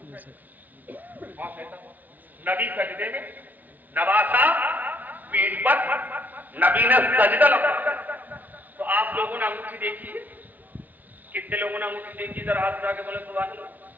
نبی سجدے میں, نواسہ پیٹھ پر, نبی نے سجدہ لمبا. تو آپ لوگوں نے انگوٹھی دیکھی ہے, کتنے لوگوں نے انگوٹھی دیکھی؟ ذرا ہاتھ اٹھا کے بولے سبحان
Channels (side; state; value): left; late; 0.079 ms